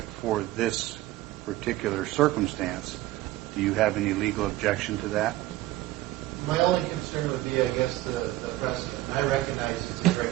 for this particular circumstance, do you have any legal objection to that? My only concern would be, I guess, the precedent. I recognize it's a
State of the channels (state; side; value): quieter; left; 16.6 dB